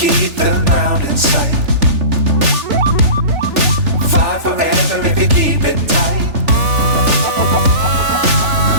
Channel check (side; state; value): left; late; 3.4 ms